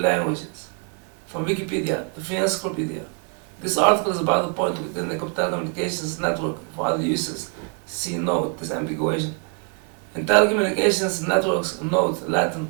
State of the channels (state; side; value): quieter; left; 36.9 dB